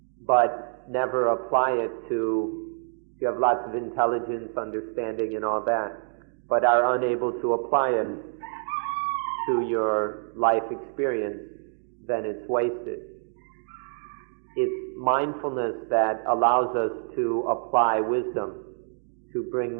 but never apply it you have lots of intelligence, understanding, and all that, but are unable to apply it to your life experience, then it's wasted. It's mindfulness that allows us to apply wisdom, to bring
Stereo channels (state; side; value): silent; left; digital silence